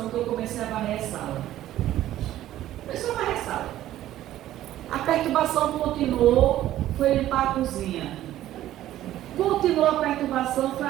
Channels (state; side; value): quieter; left; 13.5 dB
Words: que eu comecei a varrer a sala. Começou a varrer a sala. A perturbação continuou, foi limpar a cozinha. Continuou a perturbação, foi